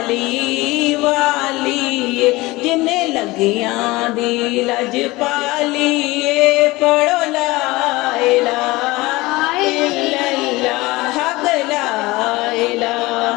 वाली जिन्ने लगियां दी लज पाली पढ़ो ला इलाहा इल्लल्लाह हक ला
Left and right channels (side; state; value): right; quieter; 20.9 dB